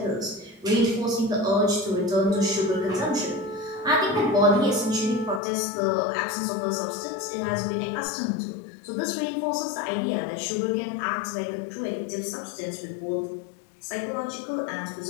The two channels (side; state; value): right; drops out; at 5.4 s